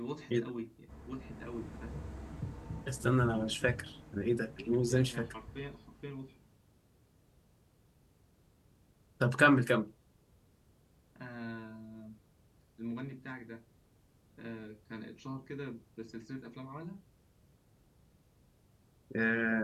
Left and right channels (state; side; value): identical; both; correlation 1.00